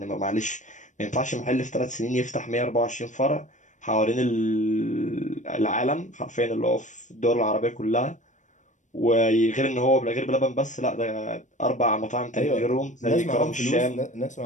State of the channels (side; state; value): right; late; 0.36 ms